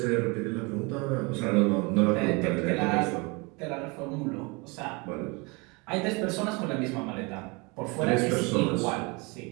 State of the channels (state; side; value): quieter; left; 28.1 dB